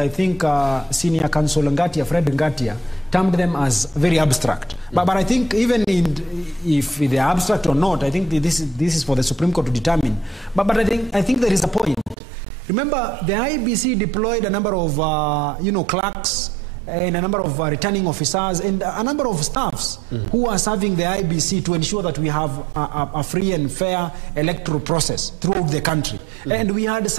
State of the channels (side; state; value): left; drops out; at 12.2 s